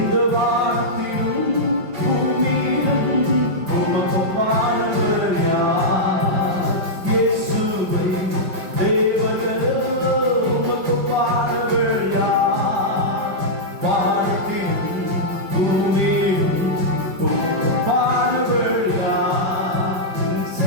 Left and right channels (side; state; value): left; late; 5.3 ms